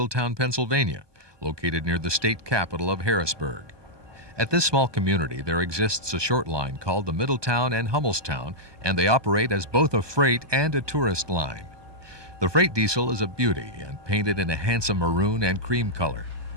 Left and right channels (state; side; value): late; left; 1.2 ms